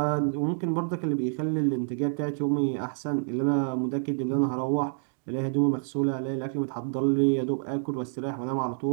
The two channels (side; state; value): left; silent; digital silence